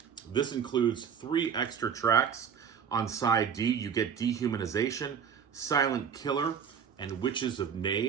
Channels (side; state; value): left; quieter; 7.4 dB